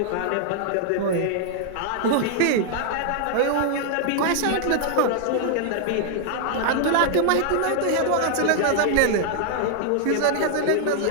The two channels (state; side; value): different; both; correlation -0.01